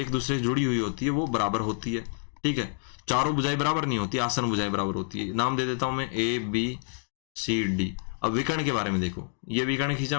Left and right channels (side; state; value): right; silent; 59 dB below the other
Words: दूसरे से जुड़ी हुई होती है वो बराबर होती है। ठीक है, चारों भुजाएं बराबर नहीं होती, आसन्न भुजाएं बराबर होती है। नाम दे देता हूं मैं ABCD। अब विकर्ण के बारे में देखो, ये विकर्ण खींचा